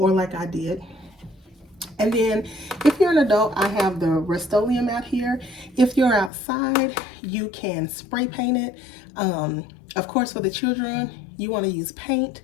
like I did. And then if you're an adult, I have the Rust-Oleum out here. If you're outside, you can spray paint it. Of course, for the children, you want to use paint,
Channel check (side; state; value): right; drops out; at 6.3 s